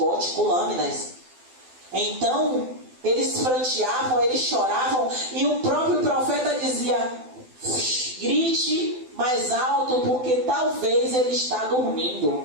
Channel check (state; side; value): late; left; 12 ms